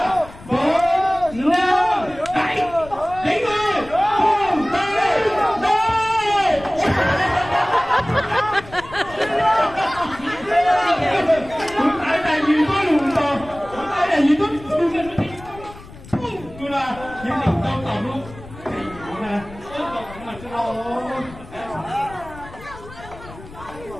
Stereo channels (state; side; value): noise; left; rumble, 18 dB below the sound